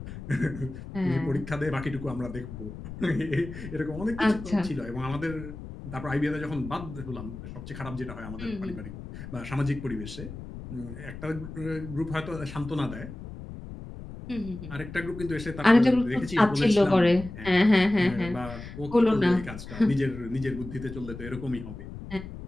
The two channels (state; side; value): noise; left; rumble, 11 dB below the sound